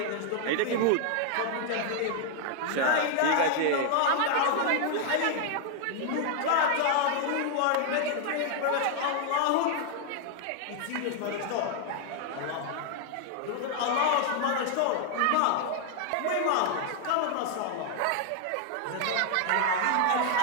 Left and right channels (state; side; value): different; both; correlation 0.00